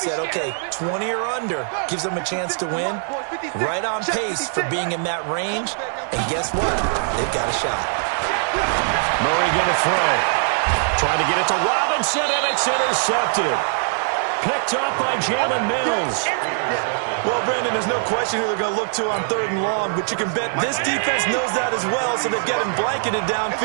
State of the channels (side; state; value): left; silent; 64 dB below the other